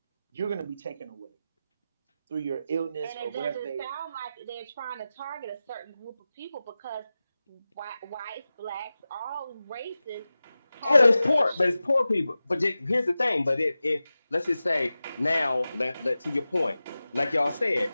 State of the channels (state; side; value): inverted; both; correlation -0.95